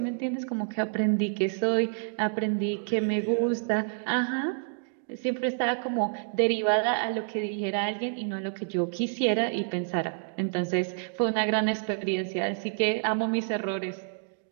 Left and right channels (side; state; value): left; silent; digital silence